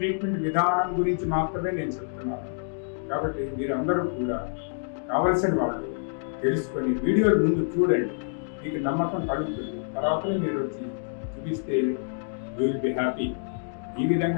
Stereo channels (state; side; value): silent; right; digital silence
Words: విధానం గురించి మాత్రమే నేను చెప్తున్నాను. కాబట్టి మీరందరూ కూడా కావలసిన వాళ్ళు తెలుసుకొని వీడియోలు ముందు చూడండి, మీకు నమ్మకం కలుగుతుంది. తర్వాతనే మీరు వచ్చి చూపిస్తే యూ విల్ బి హ్యాపీ. ఈ